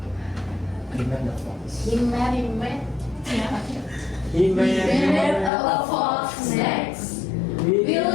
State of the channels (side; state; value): right; drops out; at 5.5 s